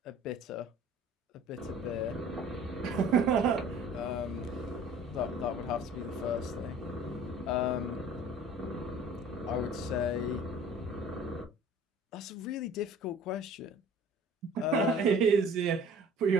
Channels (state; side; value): normal; both; correlation 0.47